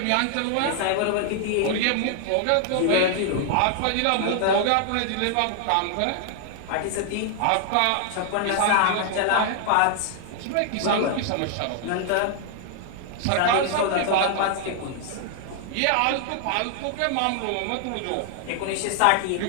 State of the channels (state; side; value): different; both; correlation 0.00